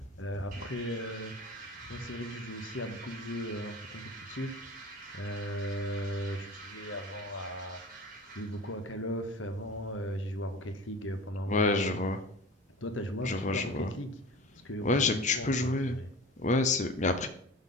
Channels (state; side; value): normal; both; correlation 0.37